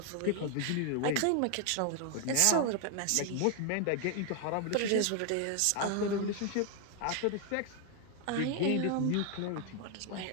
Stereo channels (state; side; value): different; both; correlation 0.00